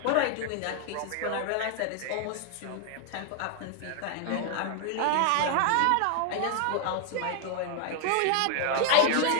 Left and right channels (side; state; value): both; different; correlation 0.00